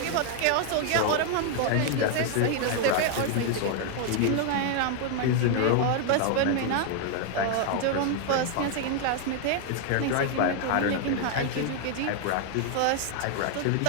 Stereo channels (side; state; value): both; different; correlation 0.00